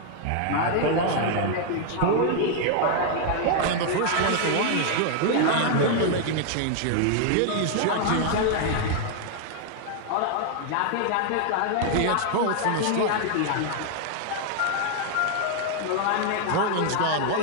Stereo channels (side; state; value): both; different; correlation 0.00